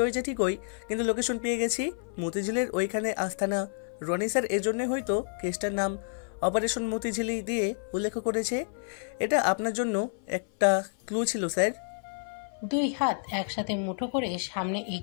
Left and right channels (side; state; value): right; silent; 56 dB below the other